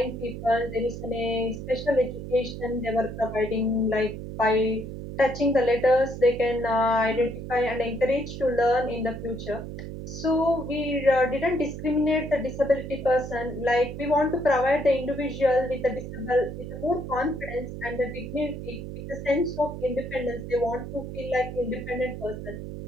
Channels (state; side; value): noise; right; hum, 8 dB below the sound